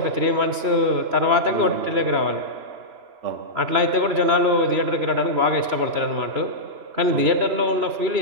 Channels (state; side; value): late; left; 3.0 ms